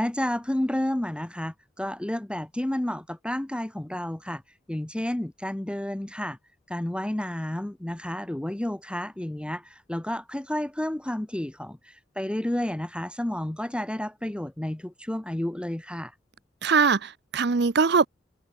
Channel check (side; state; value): both; normal; correlation 0.60